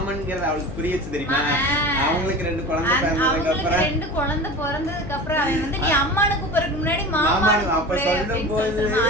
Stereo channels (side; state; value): left; noise; hum, 10 dB below the sound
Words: அவளுக்கு புரியுச்சு தெரியுமா. அவங்களுக்கு 2 குழந்தை பிறந்ததுக்கு அப்புறம் அவன் வந்து நீ அம்மானு கூப்பிடுறதுக்கு முன்னாடி மாமானு அப்ப சொல்லும் போது